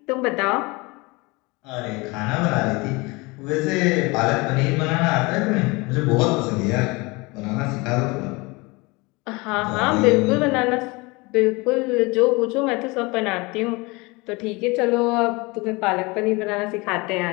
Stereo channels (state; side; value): quieter; right; 25.2 dB